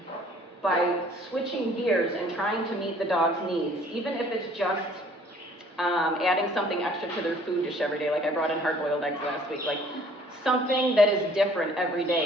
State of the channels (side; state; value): both; normal; correlation 0.56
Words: by switching gears and trying to meet the dog's needs, even if it's just adding something extra to their food dish every day, like I brought in hard-boiled eggs last week, like something that is different every